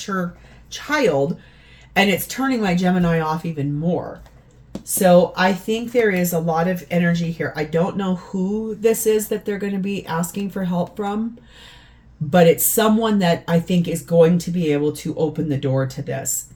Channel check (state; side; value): identical; both; correlation 1.00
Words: child, and it's turning my Gemini off even more. So I think there is a lot of energy here. I don't know who this is that they're going to be asking for help from, but it's someone that I think is going to be able to open the door to this,